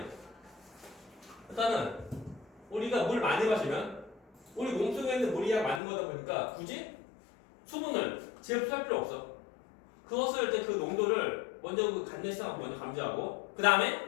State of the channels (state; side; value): drops out; right; at 5.8 s